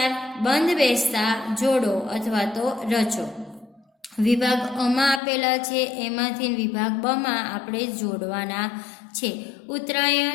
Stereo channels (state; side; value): drops out; right; at 5.2 s